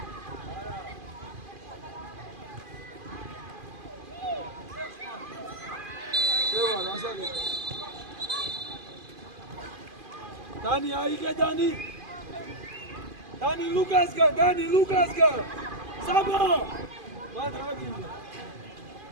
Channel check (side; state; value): left; late; 2.5 ms